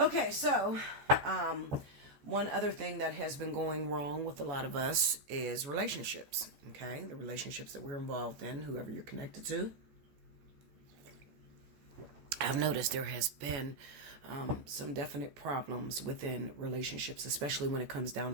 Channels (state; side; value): late; left; 14 ms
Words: So, one other thing that has been going wrong with a lot of us is relationships. Okay. The relationships that we're involved in, whoever you're connected to. I've noticed there has been some definite problems within relationships, especially when it comes down